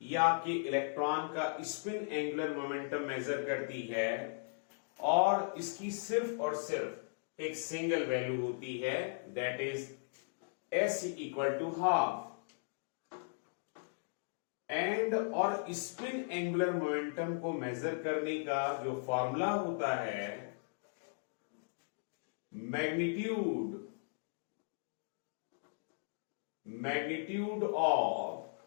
आपके electron का spin angular momentum major करती है और इसकी सिर्फ और सिर्फ एक सिंगल वैल्यू होती है, that is s equal to half. And और स्पिन एंगुलर मोमेंटम को मेजर करने का जो फॉर्मूला होता है, magnitude of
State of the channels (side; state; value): right; silent; digital silence